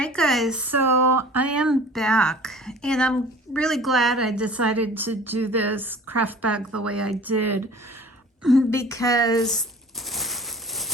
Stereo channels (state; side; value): normal; both; correlation 0.45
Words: guys, so I am back, and I'm really glad I decided to do this craft bag the way I did, because